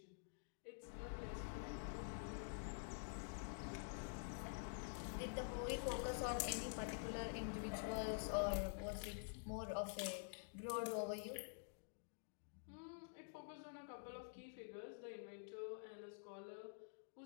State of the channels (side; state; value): right; silent; digital silence